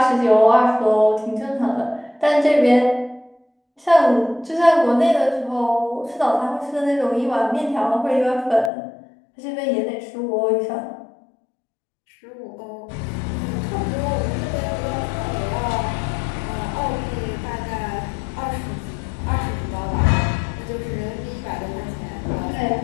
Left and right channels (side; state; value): right; drops out; at 8.7 s